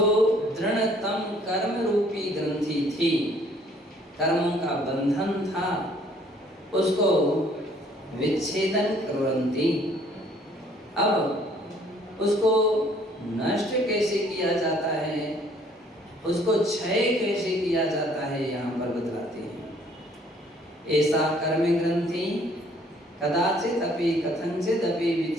दृढ़तम कर्म रूपी ग्रंथि थी, कर्मों का बंधन था, उसको विच्छेदन कुर्वन्ति। अब उसको नष्ट कैसे किया जाता है उसको क्षय कैसे किया जाता है यहाँ पर बतलाते हैं। ऐसा कर्म ग्रंथि कदाचित अपि कथंचित अपि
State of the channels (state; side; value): normal; both; correlation 0.60